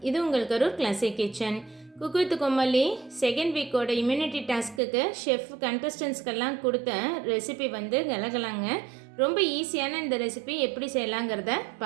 இது உங்கள் Karur classic kitchen. Cook with Comali second வீக்கோட இம்யூனிட்டி டாஸ்க்குக்கு ஷெஃப் கண்டஸ்டன்ஸ்க்கெல்லாம் கொடுத்த ரெசிபி வந்து கலகலாங்க. ரொம்ப ஈஸியான இந்த ரெசிபி எப்படி செய்யலாங்கிறத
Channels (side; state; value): left; drops out; at 4.8 s